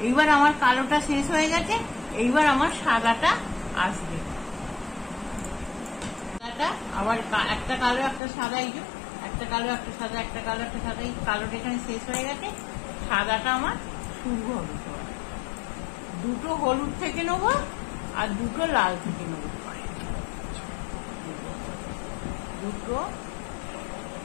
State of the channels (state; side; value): drops out; right; at 8.2 s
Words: এইবার আমার কালোটা শেষ হয়ে গেছে, এইবার আমার সাদাটা আসবে। আবার একটা কালো একটা সাদা, এই যে একটা কালো একটা সাদা, একটা কালো একটা সাদা, এই কালোটা এখানে শেষ হয়ে গেছে, সাদাটা আমার শুরু হবে। দুটো হলুদ থেকে নেবো আর দুটো লাল থেকে নেবো, দুটো